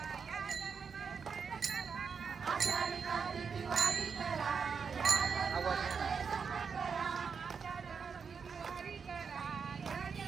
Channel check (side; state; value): left; quieter; 5.9 dB